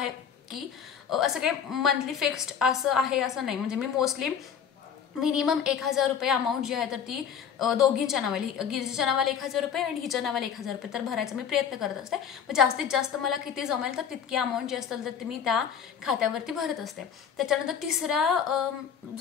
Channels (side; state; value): right; quieter; 7.7 dB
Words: की असं काही मंथली फिक्स्ड असं आहे असं नाही, म्हणजे मी मोस्टली मिनिमम 1,000 रुपये अमाऊंट जी आहे तर ती दोघींच्या नावाली, गिरिजाच्या नावाला 1,000 रुपये आणि हिच्या नावाला 1,000 रुपये तर भरायचा मी प्रयत्न करत असते. मग जास्तीत जास्त मला किती जमेल तर तितकी अमाऊंट जी असेल तर ती मी त्या खात्यावरती भरत असते. त्याच्यानंतर तिसरा